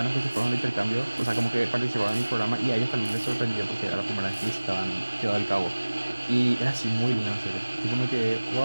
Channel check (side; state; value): both; inverted; correlation -1.00